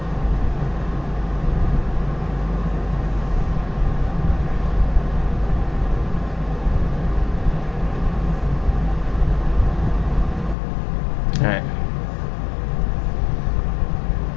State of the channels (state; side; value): drops out; right; at 10.6 s